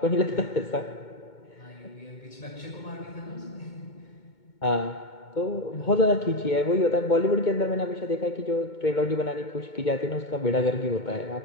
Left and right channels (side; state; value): right; late; 2.2 ms